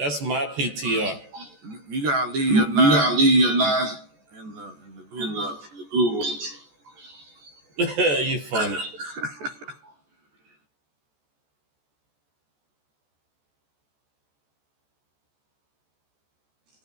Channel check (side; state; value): left; late; 14 ms